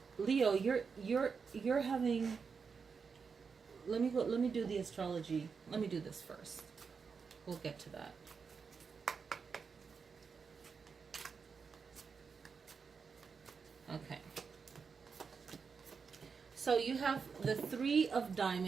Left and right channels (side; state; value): left; quieter; 5.6 dB